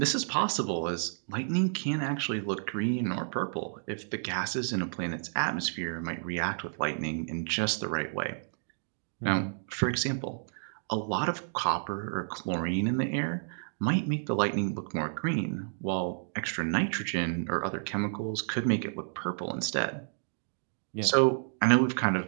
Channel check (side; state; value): left; silent; digital silence